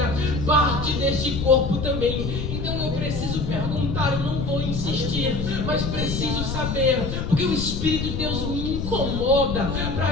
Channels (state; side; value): noise; left; rumble, 3 dB below the sound